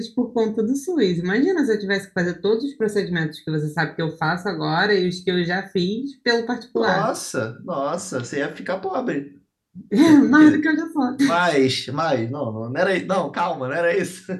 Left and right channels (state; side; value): identical; both; correlation 1.00